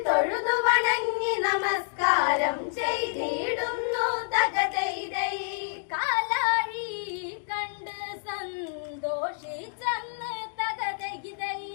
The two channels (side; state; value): right; silent; digital silence